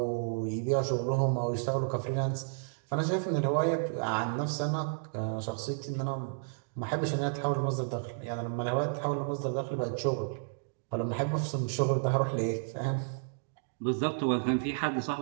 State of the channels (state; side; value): silent; left; digital silence